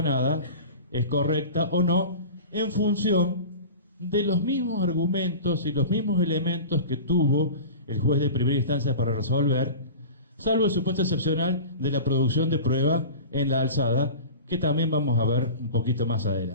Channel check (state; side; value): inverted; both; correlation -0.34